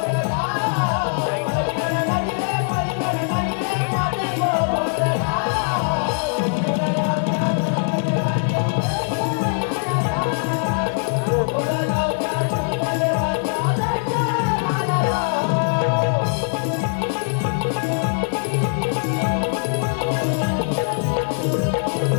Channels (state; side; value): silent; right; 62 dB below the other